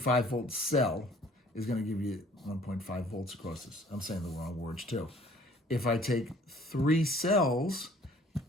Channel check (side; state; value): both; normal; correlation 0.55